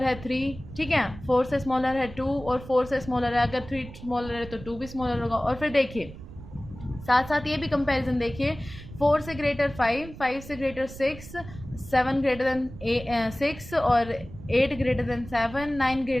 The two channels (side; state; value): right; noise; rumble, 15 dB below the sound